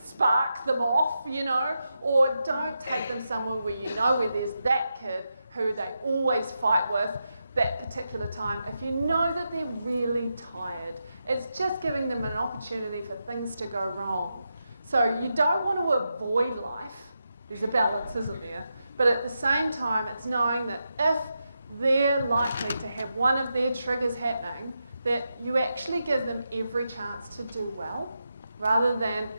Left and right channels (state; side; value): inverted; both; correlation -0.87